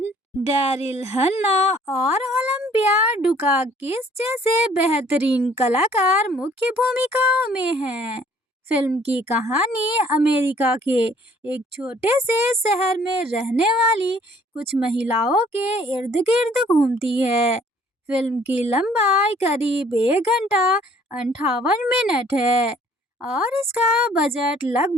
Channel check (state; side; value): normal; both; correlation 0.58